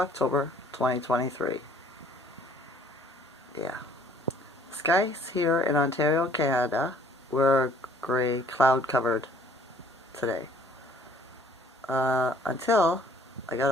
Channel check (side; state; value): both; normal; correlation 0.57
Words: 2023. Yeah. Skies here in Ontario, Canada were gray, cloud covered today. Until I got